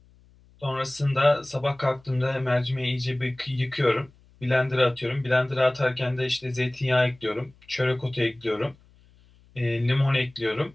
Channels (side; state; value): left; noise; hum, 29 dB below the sound